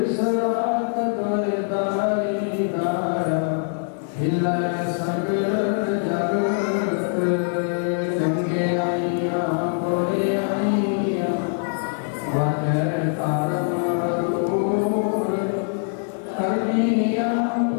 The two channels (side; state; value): right; silent; digital silence